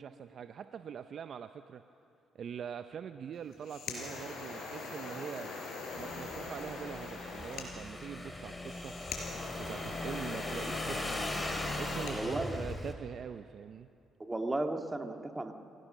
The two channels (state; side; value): normal; both; correlation 0.80